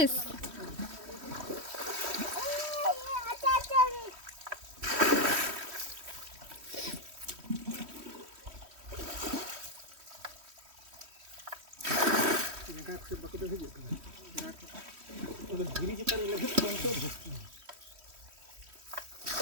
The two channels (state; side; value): late; left; 3.1 ms